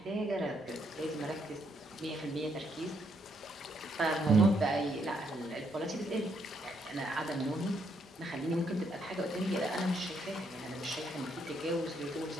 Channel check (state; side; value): normal; both; correlation 0.74